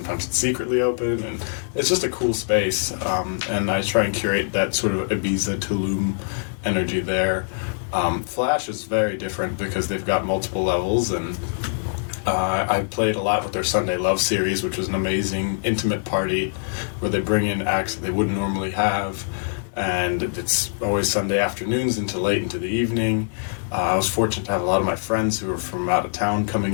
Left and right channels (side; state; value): right; silent; 57 dB below the other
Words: it's secretly open, and it's just a cool space. And I try and curate that sort of Ibiza, Tulum energy there. Flash is very different because they've got multiple levels, and I played a lot with their Sunday Love series, which was an amazing intimate party where they bring in acts that they wouldn't normally have, and it's always Sunday afternoons into late into the evening. I was fortunate to have a lot of my friends who were from out of town coming